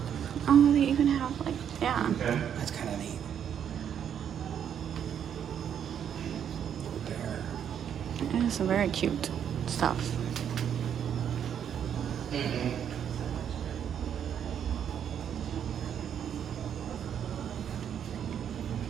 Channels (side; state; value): left; quieter; 8.8 dB